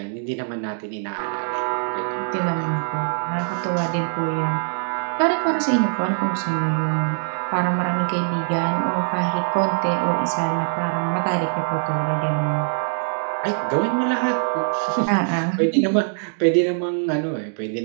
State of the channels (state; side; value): silent; left; digital silence